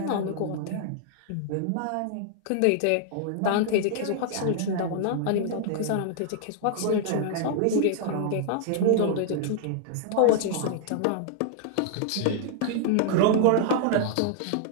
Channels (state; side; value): different; both; correlation -0.01